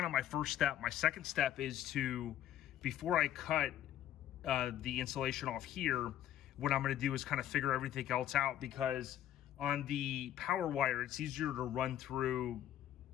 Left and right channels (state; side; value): quieter; right; 11.8 dB